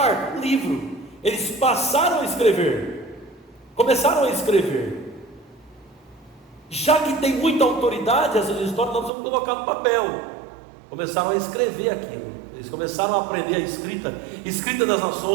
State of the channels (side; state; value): left; drops out; at 9.1 s